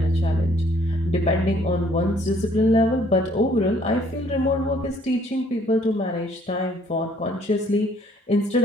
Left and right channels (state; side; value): normal; both; correlation 0.62